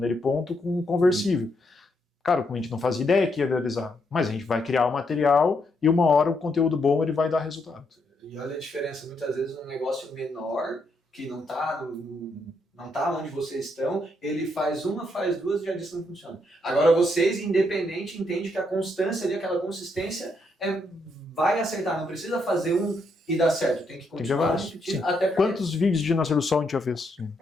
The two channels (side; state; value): both; normal; correlation 0.77